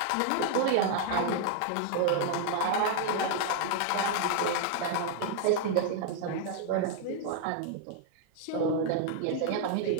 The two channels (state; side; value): different; both; correlation 0.00